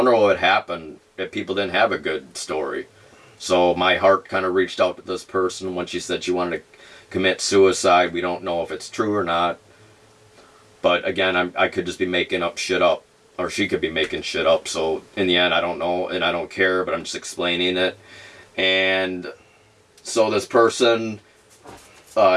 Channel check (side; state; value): both; identical; correlation 1.00